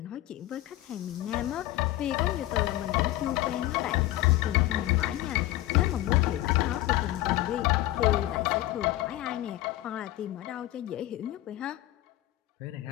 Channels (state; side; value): quieter; right; 15.9 dB